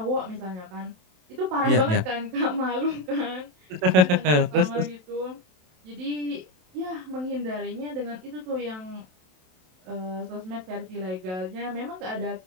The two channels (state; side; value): late; left; 27 ms